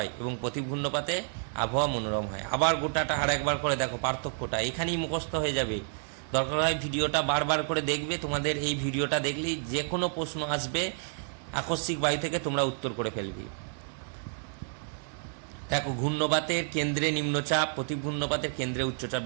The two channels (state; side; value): silent; left; digital silence